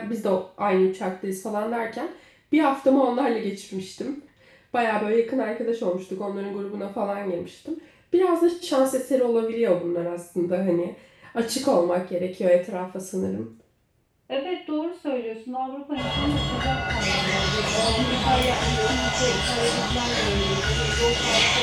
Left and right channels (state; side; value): identical; both; correlation 1.00